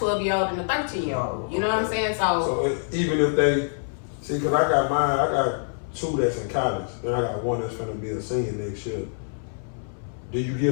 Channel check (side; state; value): right; silent; 58 dB below the other